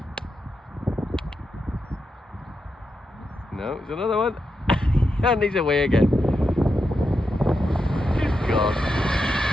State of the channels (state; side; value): normal; both; correlation 0.86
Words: No, there's another one. And he's away again. Good God.